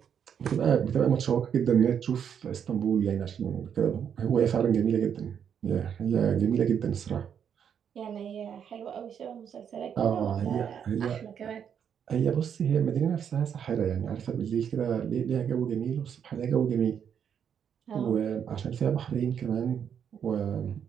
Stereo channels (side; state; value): left; quieter; 8.1 dB